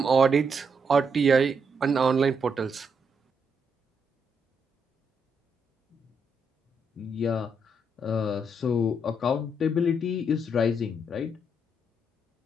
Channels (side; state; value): both; normal; correlation 0.77